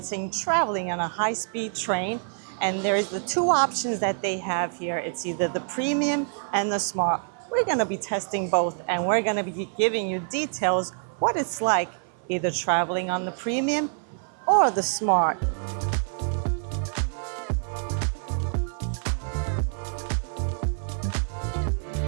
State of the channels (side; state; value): left; silent; 55 dB below the other